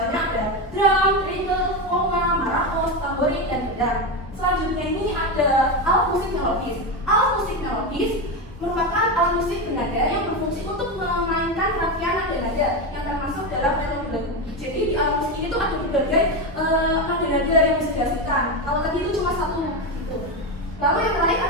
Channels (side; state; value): both; normal; correlation 0.14